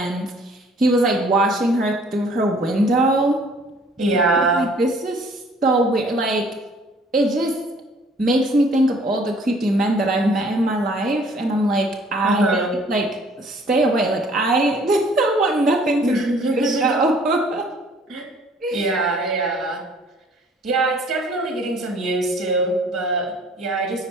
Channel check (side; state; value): both; normal; correlation 0.56